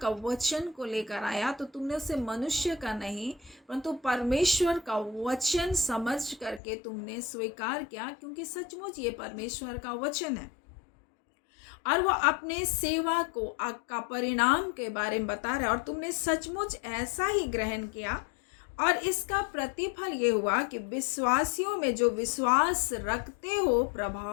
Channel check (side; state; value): right; drops out; at 6.6 s